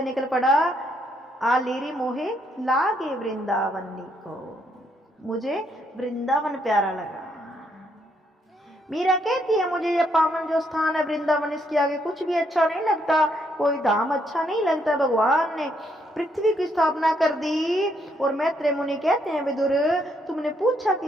निकल पड़ा, आलेरी मोहे लागे वृंदावन को, मुझे वृंदावन प्यारा लगा। मीरा कहती है, मुझे यह पावन जो स्थान है वृंदावन, इसके आगे कुछ भी अच्छा नहीं लगता, कोई धाम अच्छा नहीं लगता। भगवान ने पृथ्वी की स्थापना कर दी। और मैत्रेय मुनि कहते हैं, विदुर तुमने पूछा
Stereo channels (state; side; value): normal; both; correlation 0.74